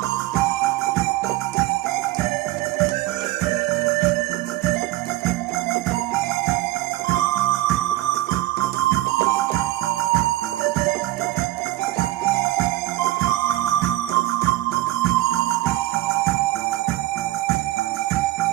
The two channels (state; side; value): quieter; left; 16.7 dB